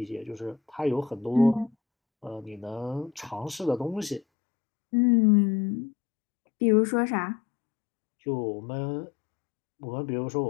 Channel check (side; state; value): right; drops out; at 4.2 s